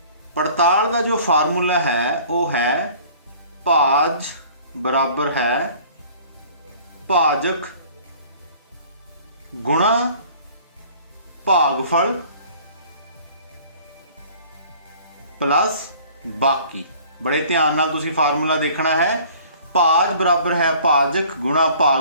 पड़ताल दा जो फार्मूला है वो है भाज बराबर है भाजक गुणा भागफल प्लस बाकी। बड़े ध्यान नाल तुसीं फार्मूला देखना है। भाज बराबर है भाजक गुणा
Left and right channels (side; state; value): both; inverted; correlation -0.50